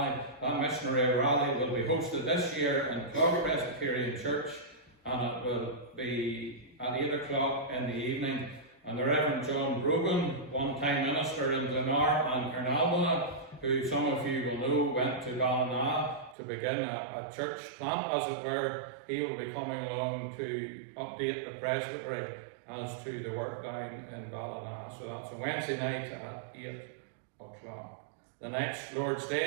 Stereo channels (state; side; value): drops out; left; at 16.4 s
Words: That missionary rally will be hosted this year in Clogher Presbyterian Church, and it will be at 8 o'clock in the evening. And the Reverend John Brogan, one-time minister in Glenar and Carnalbana, who some of you will know went to Ballina to begin a church plant, as it were, he will be coming along to update the presbytery as to the work down in Ballina. So that's a Wednesday night at 8 o'clock. The next Lord's